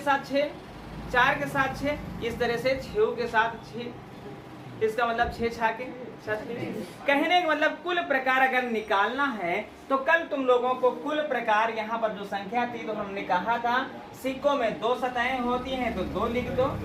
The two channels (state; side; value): identical; both; correlation 1.00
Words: 6, 4 के साथ 6, इस तरह से 6 के साथ 6। इसका मतलब 6 छाके 36। कहने का मतलब कुल प्रकार अगर निकालना है तो कल तुम लोगों को कुल प्रकार, यहाँ पर जो संख्या थी तो हमने कहा था सिक्कों में 2 सतहें होती हैं, तो 2 लिख दो,